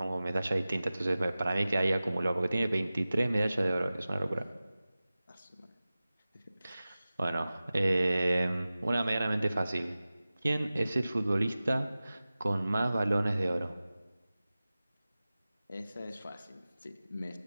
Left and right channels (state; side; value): inverted; both; correlation -0.97